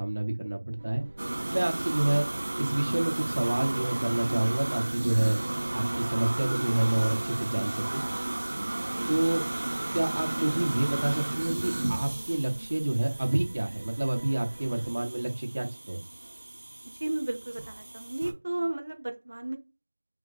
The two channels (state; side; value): inverted; both; correlation -1.00